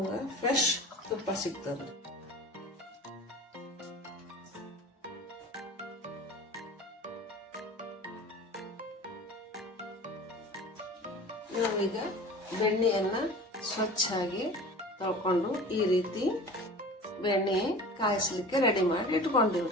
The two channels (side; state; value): both; normal; correlation 0.39